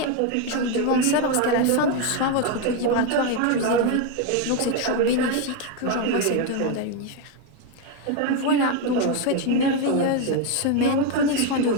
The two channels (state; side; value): different; both; correlation 0.02